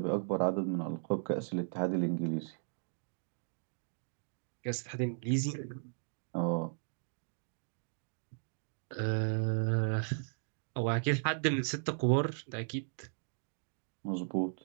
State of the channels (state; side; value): silent; left; digital silence